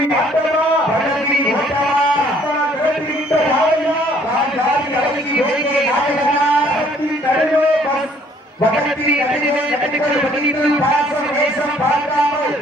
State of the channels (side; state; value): both; normal; correlation 0.61